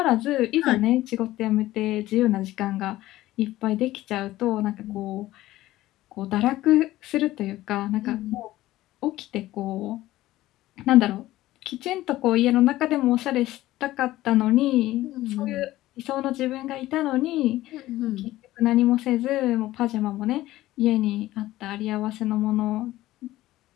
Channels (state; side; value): quieter; right; 16.0 dB